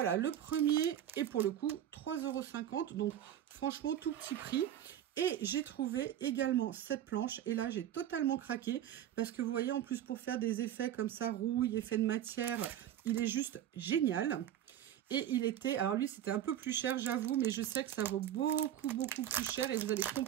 Le premier est pour le coup 3,50 €. Donc, franchement, tout petit prix. Et j'ai trouvé également cette planche. Et là, j'ai totalement craqué. Parce que vous voyez, en plus, pour faire des effets comme ça, rouille, effet de matière, il est juste génial. Et il était... Alors lui, c'était un peu plus cher, j'avoue. Mais je sais que ça vaut beaucoup, beaucoup plus cher. Et vous allez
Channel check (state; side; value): quieter; left; 10.9 dB